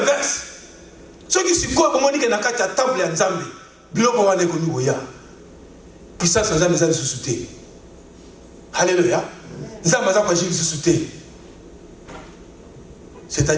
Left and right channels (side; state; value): both; identical; correlation 1.00